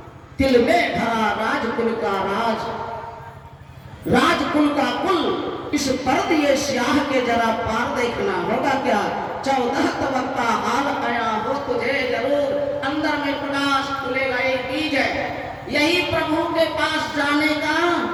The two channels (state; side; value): identical; both; correlation 1.00